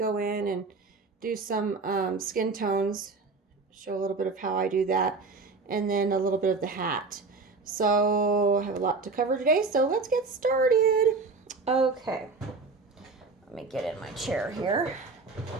in and do some skin tones, show a little bit of how I do that, and then a little bit of the hat. So I have a lot to cover today, so let's get started. Okay, let me get in my chair here.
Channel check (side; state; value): left; quieter; 4.1 dB